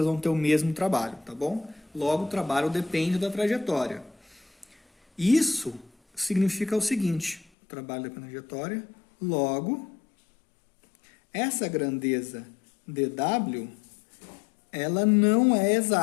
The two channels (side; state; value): right; drops out; at 7.5 s